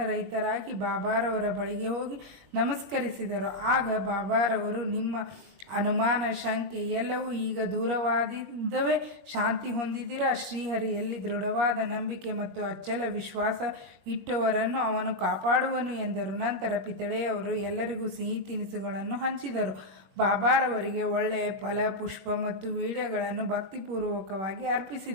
ಬಾಬಾರವರ ಬಳಿಗೆ ಹೋಗಿ ನಮಸ್ಕರಿಸಿದರು. ಆಗ ಬಾಬಾರವರು, ನಿಮ್ಮ ಅನುಮಾನ, ಶಂಕೆ ಎಲ್ಲವೂ ಈಗ ದೂರವಾದಿದ್ದವೇ? ಶಾಂತಿ ಹೊಂದಿದ್ದೀರಾ? ಶ್ರೀಹರಿಯಲ್ಲಿ ದೃಢವಾದ ನಂಬಿಕೆ ಮತ್ತು ಅಚ್ಚಲ ವಿಶ್ವಾಸ ಇಟ್ಟವರನ್ನು ಅವನು ಕಾಪಾಡುವನು ಎಂದರು. ನಂತರ ಪಿತಳೆಯವರು ಎಲ್ಲರಿಗೂ ಸಿಹಿ ತಿನಿಸುಗಳನ್ನು ಹಂಚಿದರು. ಬಾಬಾರವರಿಗೆ ಒಳ್ಳೆಯ ಫಲ, ಪುಷ್ಪ ಮತ್ತು ವೀಳ್ಯಗಳನ್ನು ಭಕ್ತಿಪೂರ್ವಕವಾಗಿ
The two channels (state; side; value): late; left; 21 ms